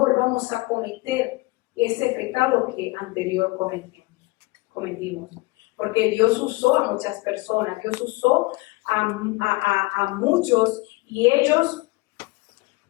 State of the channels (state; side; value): quieter; right; 23.3 dB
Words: a cometer ese pecado que anterior cometimos. Porque Dios usó a muchas personas, Dios usó a muchos y ellos